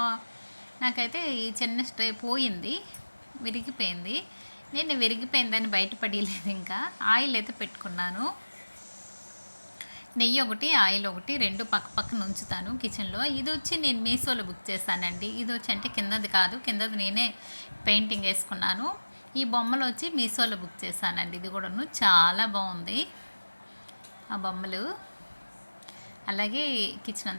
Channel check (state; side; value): inverted; both; correlation -1.00